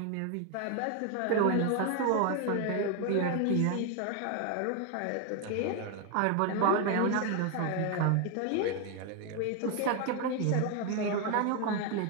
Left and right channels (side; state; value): both; different; correlation 0.01